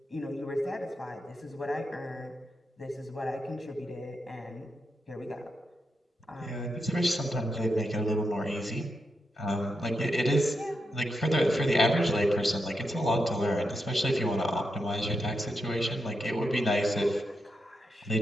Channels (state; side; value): normal; both; correlation 0.85